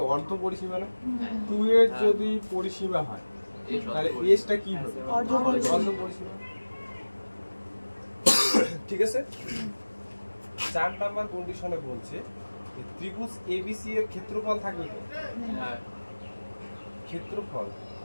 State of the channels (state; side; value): inverted; both; correlation -1.00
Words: অর্ধ পরিসীমা না? 2 এর যদি পরিসীমা হয় তাহলে s টা কি হবে? অর্ধ পরিসীমা। ঠিক আছে, 4 নাম্বার কন্ডিশনে বলছে ত্রিভুজ এবিসি এর ক্ষেত্রফল থাকবে তো? হ্যাঁ ক্ষেত্রফল